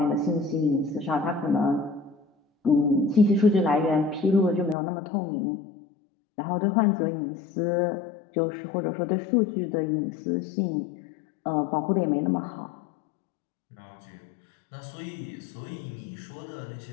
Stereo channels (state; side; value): drops out; right; at 4.8 s